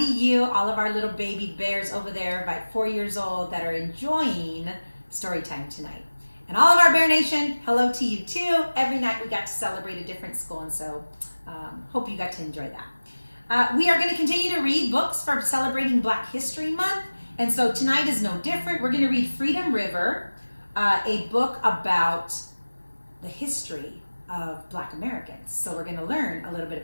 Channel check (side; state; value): both; inverted; correlation -1.00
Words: you, all of our little baby bears over there, about 4 years old, that are enjoying story time tonight. And all of our Bear Nation, hello to you too. Every night we got to celebrate a different school, and so hope you got to enjoy that. We are going to continue to read books for celebrating Black History Month, and so tonight is no different. We're going to read Freedom River, a book about the history of Black Americans. So we're going to learn a little bit